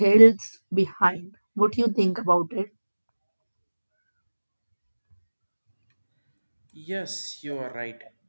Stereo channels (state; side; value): inverted; both; correlation -1.00